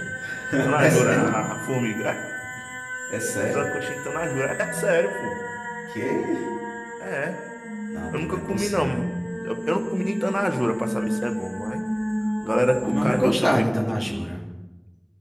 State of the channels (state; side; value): identical; both; correlation 1.00